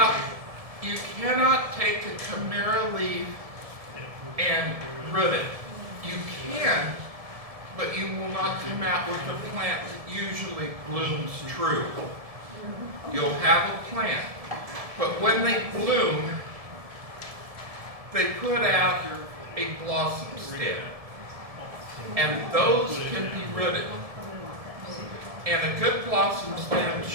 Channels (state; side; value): late; left; 1.7 ms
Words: cannot take a chimera leaf and root it. You can, but you will not come out with a plant that usually blooms true. You'll have a plant, but when they bloom, they put out a blossom stem, and those can be rooted. And a good blossom stem